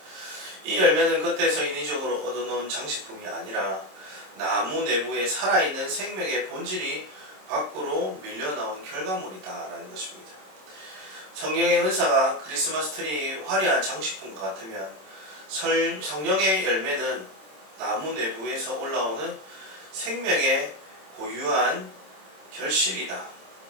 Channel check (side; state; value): left; late; 26 ms